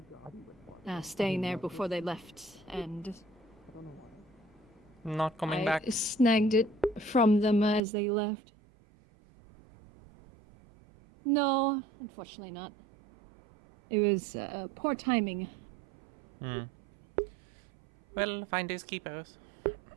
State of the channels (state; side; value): drops out; left; at 7.8 s